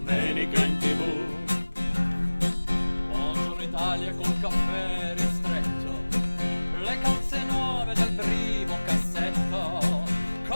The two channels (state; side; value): inverted; both; correlation -1.00